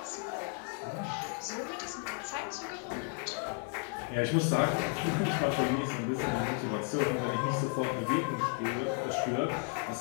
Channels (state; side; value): quieter; right; 34.2 dB